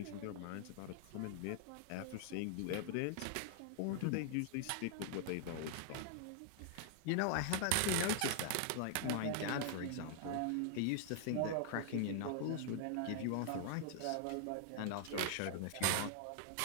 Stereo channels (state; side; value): different; both; correlation 0.00